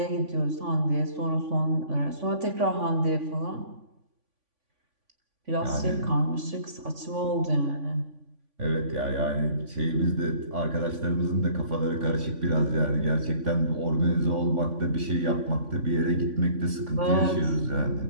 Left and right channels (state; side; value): late; left; 3.5 ms